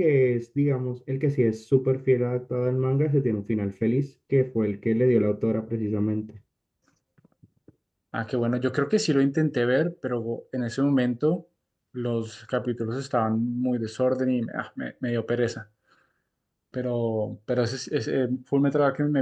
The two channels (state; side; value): identical; both; correlation 1.00